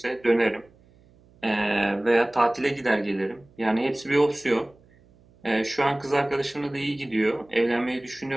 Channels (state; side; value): noise; right; hum, 29 dB below the sound